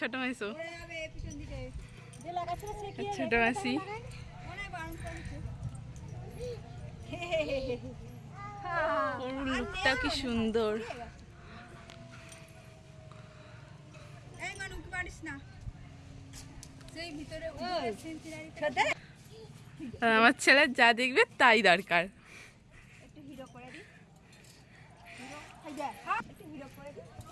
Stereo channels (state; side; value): identical; both; correlation 1.00